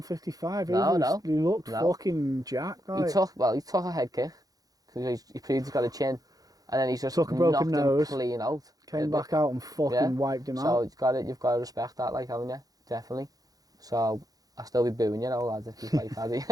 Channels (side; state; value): left; late; 0.18 ms